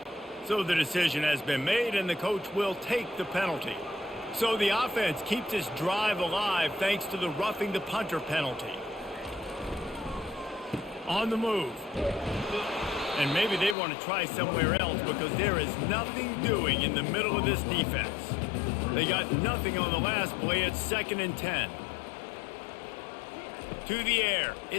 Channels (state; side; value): drops out; right; at 13.8 s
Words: So the decision has been made, and the coach will take the penalty. So the offense keeps this drive alive thanks to the roughing the punter penalty. On the move. And maybe they want to try somewhere else because there is nothing doing in the middle of this defense. They got nothing on the last play. It's 2nd and 10. To the air,